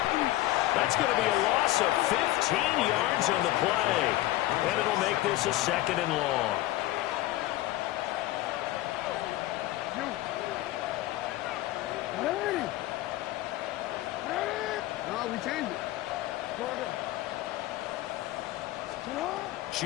That's going to be a loss of 15 yards on the play. And it'll make this a 2nd and long. Ready? No, we changed it.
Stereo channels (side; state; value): right; quieter; 16.4 dB